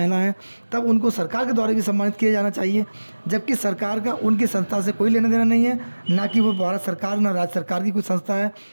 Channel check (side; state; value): both; inverted; correlation -1.00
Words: हैं तब उनको सरकार के द्वारा भी सम्मानित किया जाना चाहिए, जबकि सरकार का उनकी संस्था से कोई लेना देना नहीं है, ना कि वो भारत सरकार ना राज्य सरकार की कोई संस्था है,